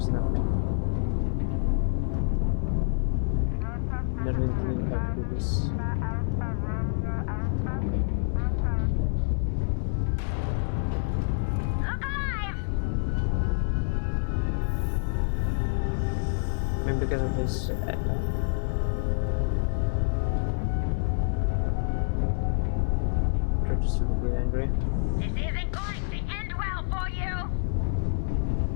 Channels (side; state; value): right; silent; 60 dB below the other